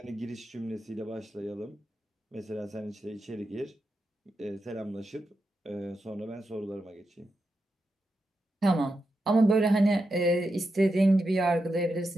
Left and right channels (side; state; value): both; normal; correlation 0.87